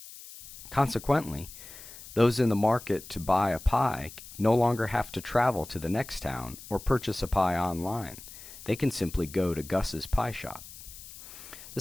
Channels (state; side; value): noise; left; hiss, 16 dB below the sound